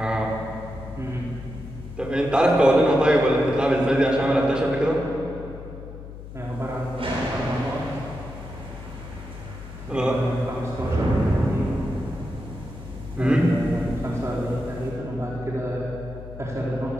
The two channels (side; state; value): left; noise; hum, 12 dB below the sound